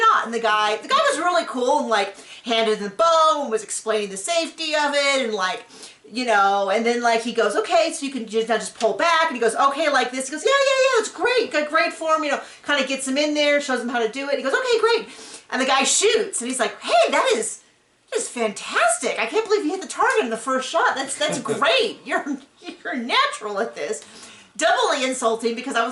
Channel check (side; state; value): both; identical; correlation 1.00